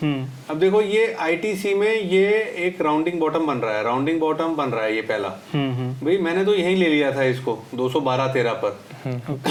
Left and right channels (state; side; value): identical; both; correlation 1.00